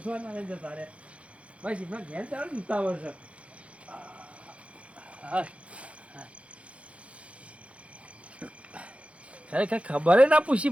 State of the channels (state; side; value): late; left; 0.062 ms